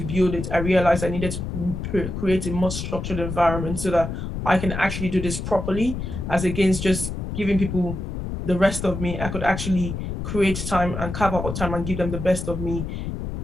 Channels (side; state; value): left; noise; rumble, 5 dB below the sound